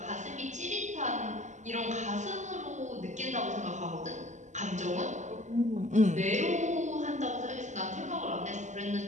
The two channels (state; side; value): late; left; 0.34 ms